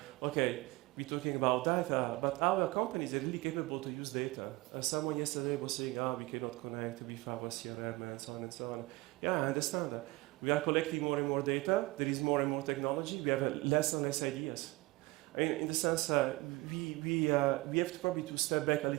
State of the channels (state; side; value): quieter; left; 21.9 dB